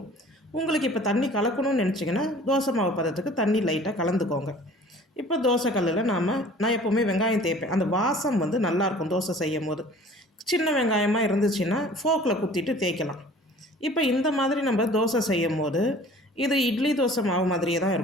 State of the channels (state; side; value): normal; both; correlation 0.48